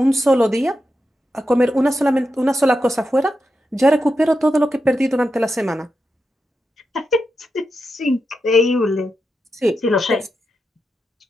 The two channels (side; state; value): both; normal; correlation 0.88